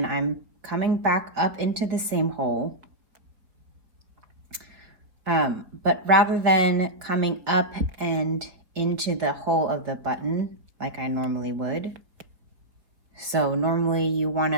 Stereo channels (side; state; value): left; late; 4.3 ms